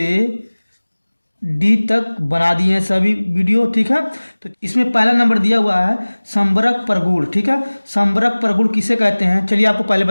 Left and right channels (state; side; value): inverted; both; correlation -1.00